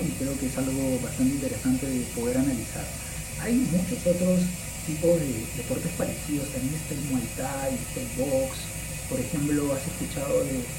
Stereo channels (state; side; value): identical; both; correlation 1.00